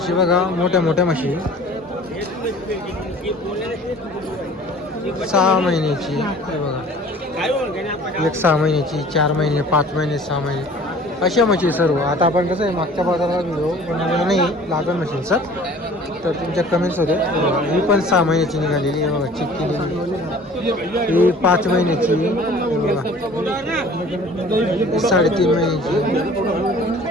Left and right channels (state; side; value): normal; both; correlation 0.48